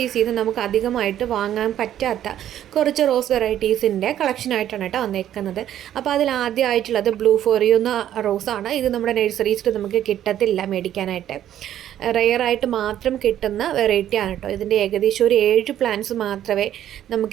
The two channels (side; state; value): left; quieter; 11.3 dB